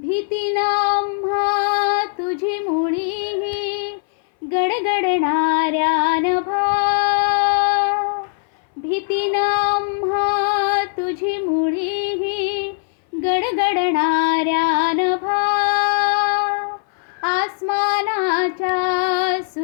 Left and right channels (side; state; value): right; silent; 63 dB below the other